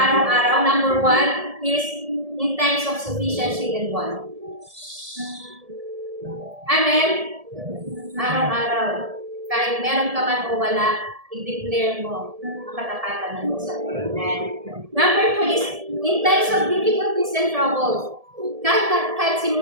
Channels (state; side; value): late; left; 1.7 ms